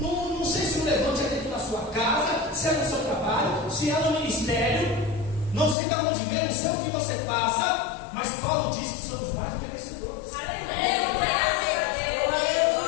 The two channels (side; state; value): right; drops out; at 5.8 s